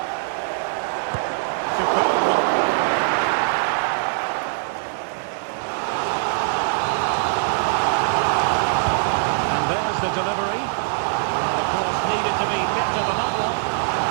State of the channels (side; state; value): left; silent; digital silence